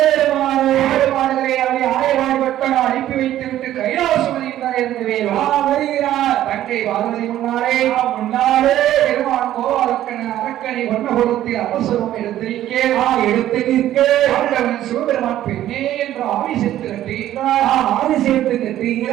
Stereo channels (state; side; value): quieter; left; 12.8 dB